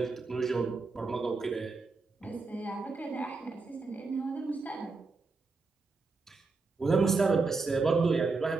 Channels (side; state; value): left; quieter; 4.0 dB